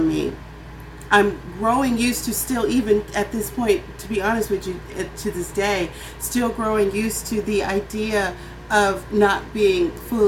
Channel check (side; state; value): both; identical; correlation 1.00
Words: me, I'm growing used to, still even at this point, to be honest with you, to this day, still growing used to the idea of not being